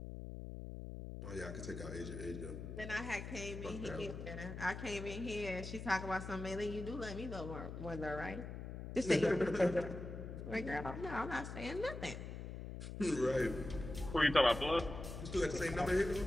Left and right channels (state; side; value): noise; left; hum, 8 dB below the sound